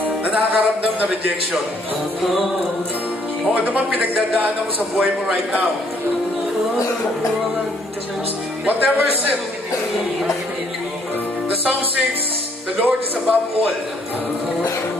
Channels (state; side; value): normal; both; correlation 0.66